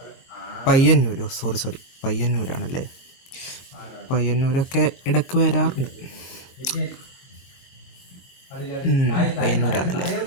പയ്യന്നൂരോ? സോറി, പയ്യന്നൂരാണല്ലേ? പയ്യന്നൂരൊക്കെ ഇടയ്ക്ക് വരാറുണ്ട്. പയ്യന്നൂരാണല്ലേ?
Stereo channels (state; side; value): late; right; 22 ms